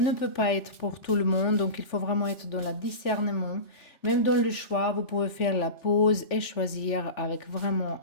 peut pas être pour tout le monde, donc il faut vraiment être dans le discernement. Même dans le choix, vous pouvez faire la pause et choisir avec vraiment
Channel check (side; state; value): right; late; 3.4 ms